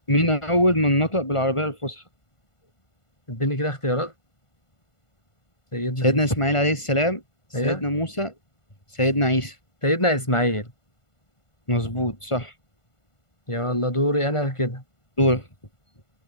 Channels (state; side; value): late; right; 1.5 ms